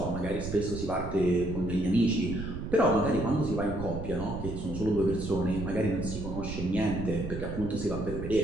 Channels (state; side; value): noise; right; rumble, 7 dB below the sound